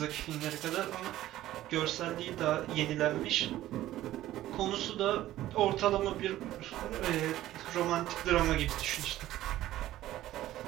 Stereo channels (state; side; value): quieter; left; 14.4 dB